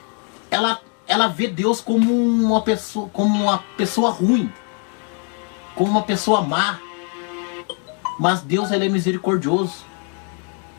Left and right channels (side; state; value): right; quieter; 37.1 dB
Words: ela vê Deus como uma pessoa ruim, como uma pessoa má. Mas Deus ele é misericordioso.